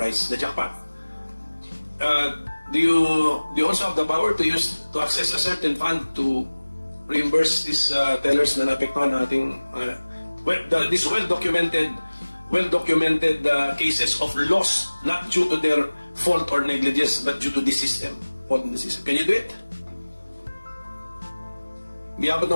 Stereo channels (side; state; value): both; inverted; correlation -1.00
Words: the jackpot. Do you also have the power to access a certain fund to reimburse these tellers na naapektuhan ng ating these well-documented cases of loss not due to their fault or negligence but due to the system, fault in the system. Can you do it? Di abot